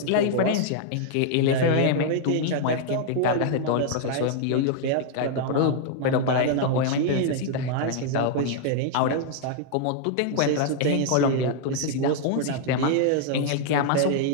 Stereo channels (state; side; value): different; both; correlation -0.01